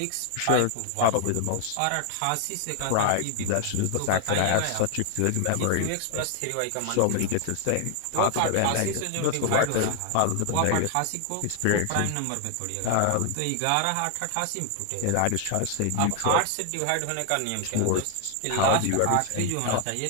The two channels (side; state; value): both; different; correlation 0.00